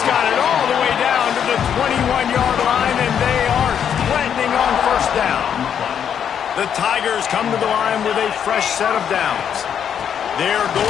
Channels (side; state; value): right; quieter; 8.4 dB